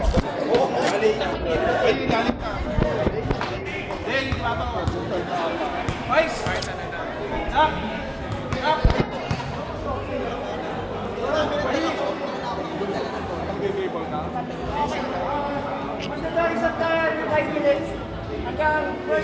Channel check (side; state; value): both; identical; correlation 1.00